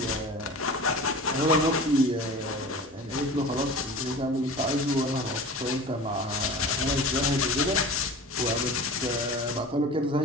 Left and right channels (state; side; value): normal; both; correlation 0.36